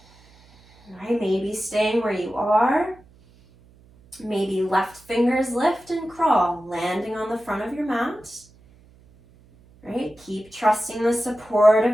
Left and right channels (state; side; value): noise; right; hum, 28 dB below the sound